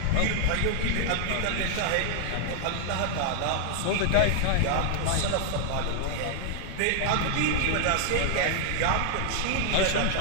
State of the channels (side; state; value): both; different; correlation 0.00